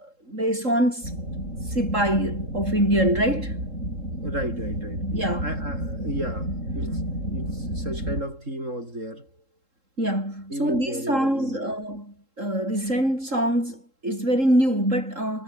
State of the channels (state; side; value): late; left; 3.7 ms